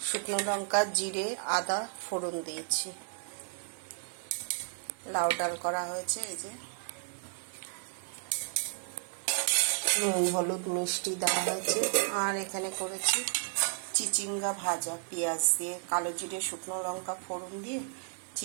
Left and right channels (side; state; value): left; silent; digital silence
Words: শুকনো লঙ্কা, জিরে, আদা ফোড়ন দিয়েছি। লাউ ডাল করা হয়েছে। এই যে নুন হলুদ মিষ্টি দেওয়া হয়েছে। আর এখানে করেছি চিচিঙ্গা ভাজা, পেঁয়াজ দিয়ে, কালো জিরে শুকনো লঙ্কা ফোড়ন দিয়ে